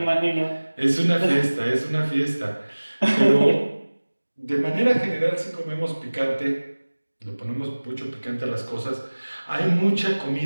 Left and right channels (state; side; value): inverted; both; correlation -1.00